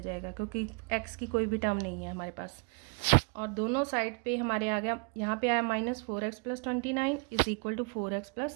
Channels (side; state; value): left; quieter; 34.6 dB